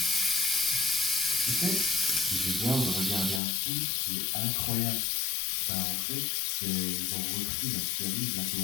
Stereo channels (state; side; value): drops out; right; at 3.4 s